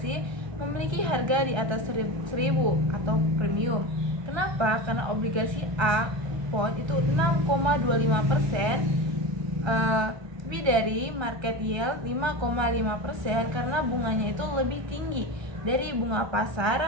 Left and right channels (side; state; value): left; late; 1.3 ms